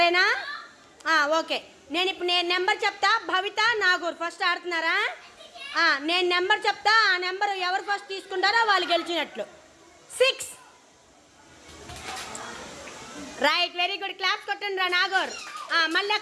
ఓకే. నేను నెంబర్ చెప్తా. భవిత, నాగూర్ ఫస్ట్ ఆడుతున్నారా? నేను నెంబర్ చెప్తా. ఆ నెంబర్ ఎవరు ఫస్ట్ తీసుకుంటారో వాళ్ళు గెలిచినట్లు. 6. Right, very good. క్లాప్స్ కొట్టండి రా నాగూర్. మళ్ళీ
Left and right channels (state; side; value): identical; both; correlation 1.00